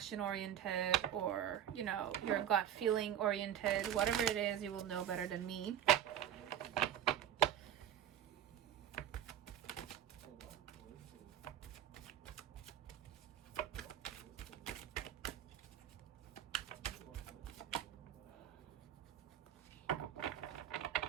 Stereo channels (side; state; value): left; quieter; 10.3 dB